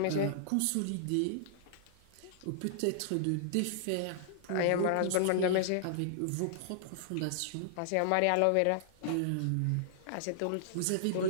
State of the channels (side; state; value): both; different; correlation -0.01